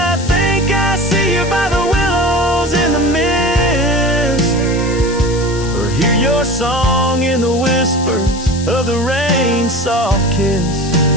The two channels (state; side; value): noise; left; hiss, 13 dB below the sound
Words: think I see you by the willows in the mist, or hear your song in the whispers of the rain's soft kiss.